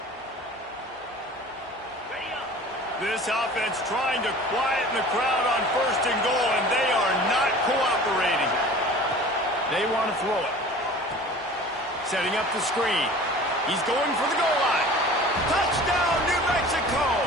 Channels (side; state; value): both; normal; correlation 0.42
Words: This offense trying to quieten the crowd on 1st and goal, and they are not cooperating. They want to throw it. Setting up the screen. He's going for the goal line. Touchdown, New Mexico!